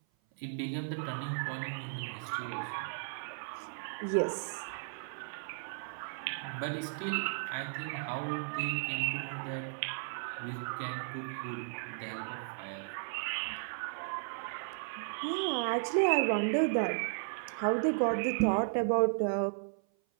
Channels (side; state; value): left; silent; 54 dB below the other